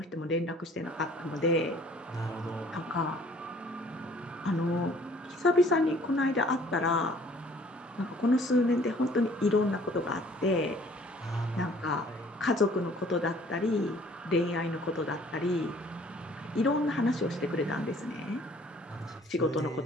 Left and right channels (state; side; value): normal; both; correlation 0.56